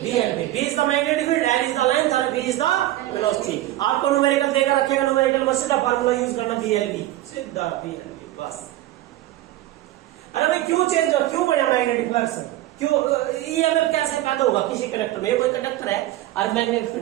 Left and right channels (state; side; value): quieter; left; 15.3 dB